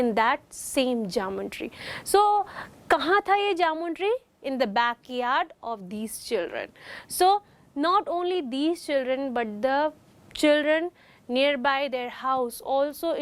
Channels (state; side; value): identical; both; correlation 1.00